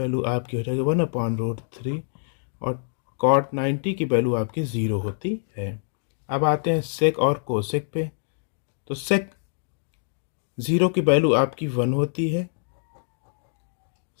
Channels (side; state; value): right; silent; digital silence